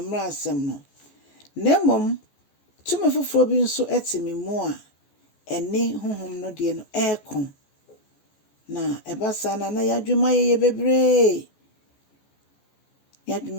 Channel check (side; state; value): right; late; 14 ms